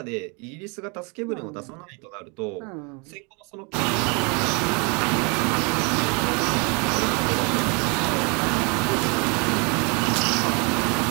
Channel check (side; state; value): left; quieter; 32.2 dB